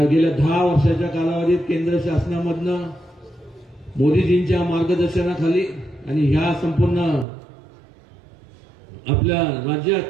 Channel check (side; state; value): left; drops out; at 7.2 s